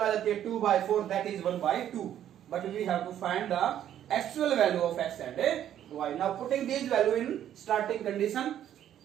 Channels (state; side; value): quieter; left; 10.8 dB